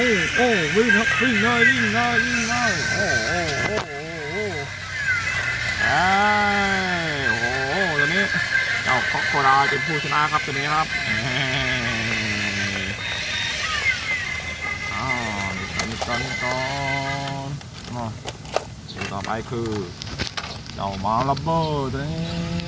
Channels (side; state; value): both; identical; correlation 1.00